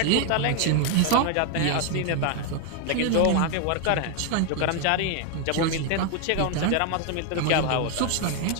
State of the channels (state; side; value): different; both; correlation 0.00